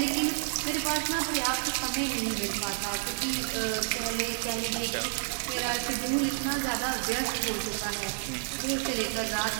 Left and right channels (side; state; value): left; silent; 58 dB below the other